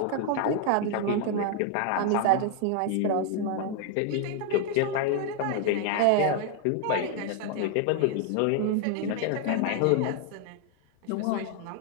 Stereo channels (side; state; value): both; different; correlation 0.00